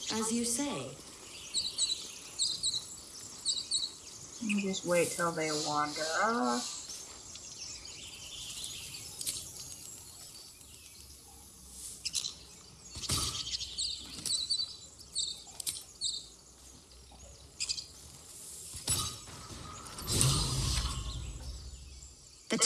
As you say. You just wait till they wander off. The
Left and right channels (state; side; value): identical; both; correlation 1.00